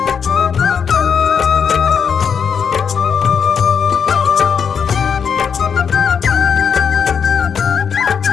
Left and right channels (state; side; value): quieter; right; 6.9 dB